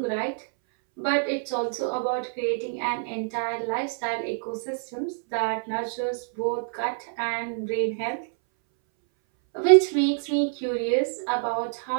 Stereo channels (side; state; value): left; silent; 61 dB below the other